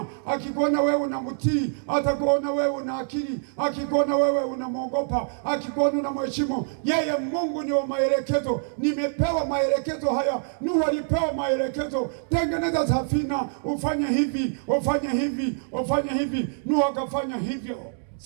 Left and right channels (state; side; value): silent; left; digital silence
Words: akikuona wewe unamtii, atakuona wewe una akili, akikuona wewe unamwogopa, akikuona unamheshimu yeye. Mungu ni wa maelekezo. Nimepewa maelekezo haya. Nuhu alipewa maelekezo, tengeneza safina, ufanye hivi, ufanye hivi, ufanye hivi. Nuhu akafanya hivyo.